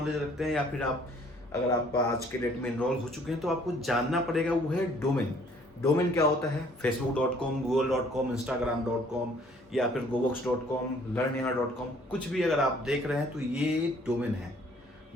रखते हैं या फिर अगर आप आज के डेट में इनरोल हो चुके हैं तो आपको जानना पड़ेगा वो है डोमेन क्या होता है। facebook.com, google.com, instagram.com या फिर gobox.com, learnyaha.com, कुछ भी अगर आप देख रहे हैं तो ये डोमेन है।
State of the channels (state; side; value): normal; both; correlation 0.59